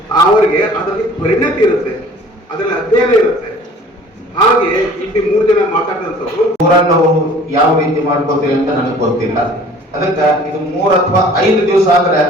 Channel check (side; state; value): both; normal; correlation 0.49